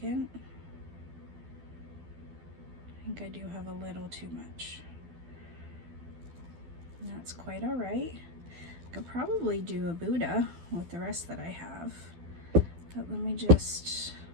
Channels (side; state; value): left; late; 12 ms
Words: I think I do have a little too much. And that's quite all right. I could probably do a Buddha with the rest that I have. But let me just,